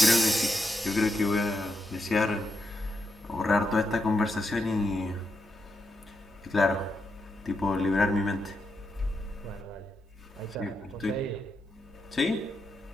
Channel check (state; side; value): normal; both; correlation 0.84